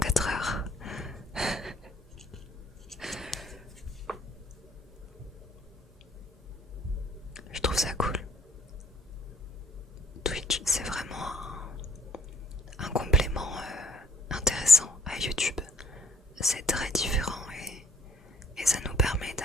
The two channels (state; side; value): normal; both; correlation 0.62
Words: heures. Je trouve ça cool. Twitch, c'est vraiment un complément intéressant à YouTube. C'est très différent et ça nous permet